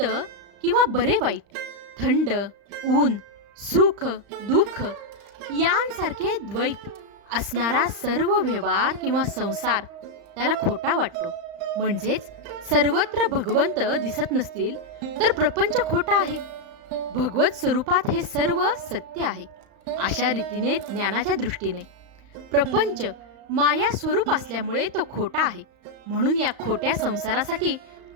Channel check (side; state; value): left; late; 35 ms